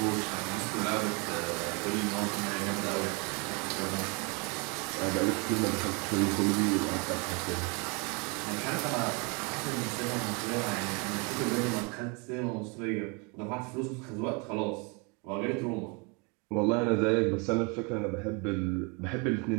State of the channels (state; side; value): quieter; left; 31.7 dB